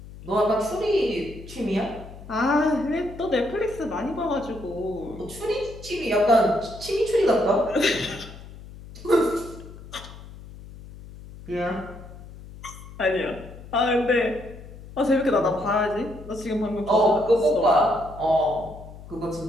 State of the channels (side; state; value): left; noise; hum, 16 dB below the sound